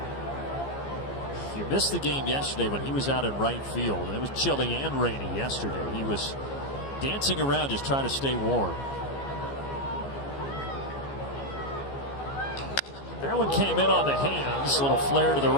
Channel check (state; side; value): late; right; 15 ms